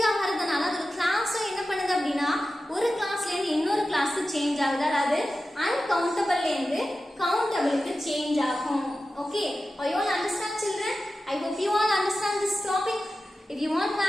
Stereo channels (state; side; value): normal; both; correlation 0.93